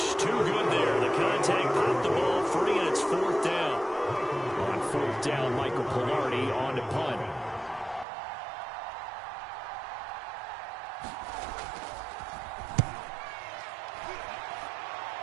too good there. The contact popped the ball free, and it's 4th down. On 4th down, Michael Pilardi on to punt.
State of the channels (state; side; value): drops out; left; at 8.1 s